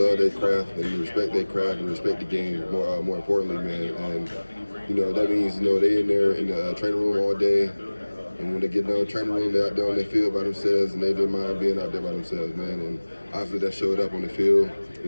their craft and respect their craft and respect the game. More importantly, man. And that means they in there in the training room all day. And when they get done training room, they're out there on their field by themselves, and they didn't mind being out there by themselves, man. And obviously that showed up on the field,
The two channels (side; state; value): both; inverted; correlation -1.00